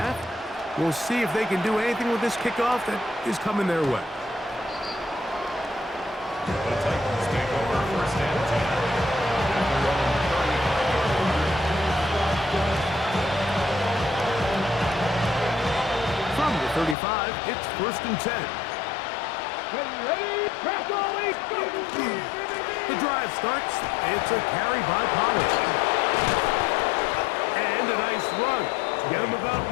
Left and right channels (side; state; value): right; drops out; at 16.9 s